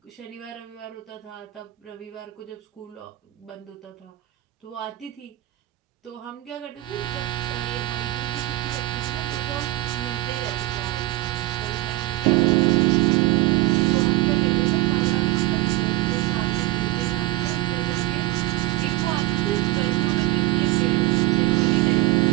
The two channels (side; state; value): left; quieter; 17.6 dB